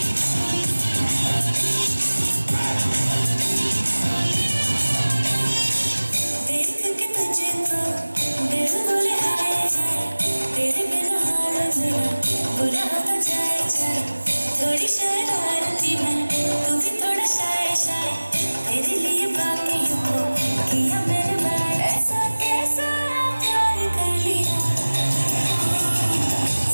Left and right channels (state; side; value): inverted; both; correlation -1.00